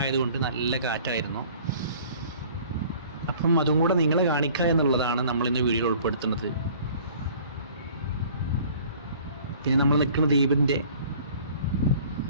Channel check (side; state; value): both; inverted; correlation -0.50